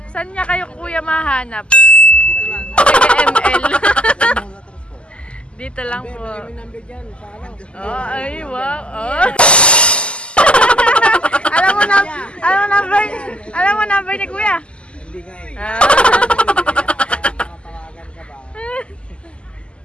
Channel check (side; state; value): right; late; 0.053 ms